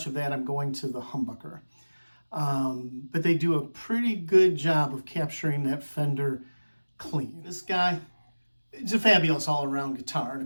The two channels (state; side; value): inverted; both; correlation -1.00